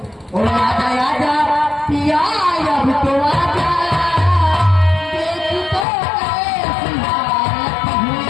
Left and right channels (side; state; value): right; drops out; at 5.9 s